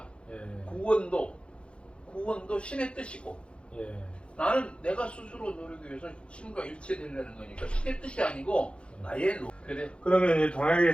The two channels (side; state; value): right; late; 0.058 ms